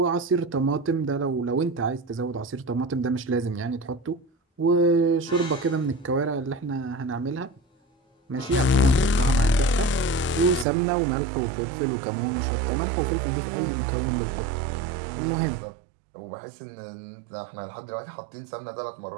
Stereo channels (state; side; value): drops out; left; at 10.7 s